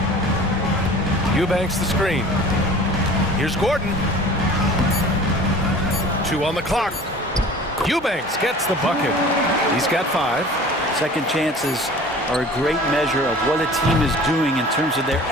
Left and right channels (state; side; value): normal; both; correlation 0.44